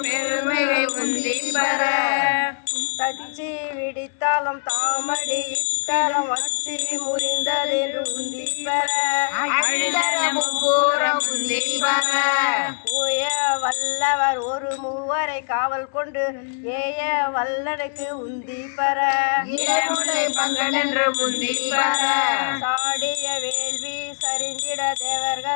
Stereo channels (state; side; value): silent; right; 63 dB below the other